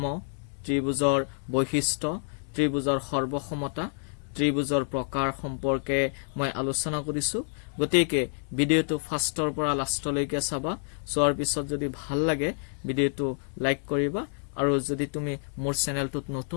ত্ৰিভুজৰ বৈশিষ্ট্য ত্ৰিভুজৰ সৰ্বসমতা ত্ৰিভুজৰ প্ৰকাৰ সম্পৰ্কে মই আলোচনা কৰিছো গতিকে ভিডিঅ'টো ফাৰ্ষ্টৰ পৰা লাষ্টলৈকে চাবা চোৱাৰ পিছত যদি ভাল লাগে ভিডিঅ'টো লাইক কৰিবা আৰু যদি তুমি মোৰ চেনেলটোত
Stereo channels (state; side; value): silent; right; digital silence